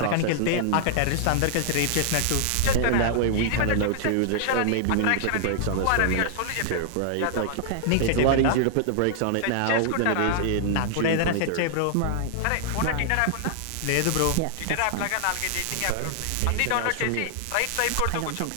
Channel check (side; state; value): both; different; correlation -0.01